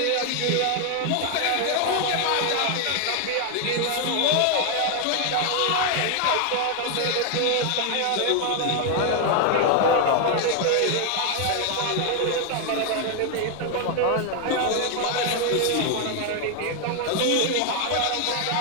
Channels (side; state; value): both; different; correlation 0.00